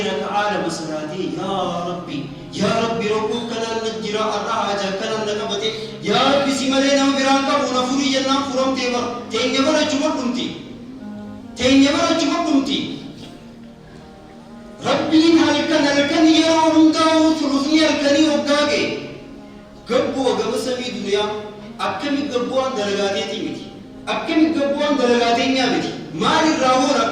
ركعال مسراتي يا ربي ربو كنان نجراء الرحاجة كنان نقبتي يا ربي سمالينا وبرانكا ونفوري جنان فرم تيبر تينيبر أجمع كنتي ربين هلكن يرون داو ثلثني هلكني وقاقي قبو وقب سمي دنيا أكمي قبوان درجاتي تيمتي أكمي قبوان درجاتي نيامتي مالي الراور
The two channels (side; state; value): both; identical; correlation 1.00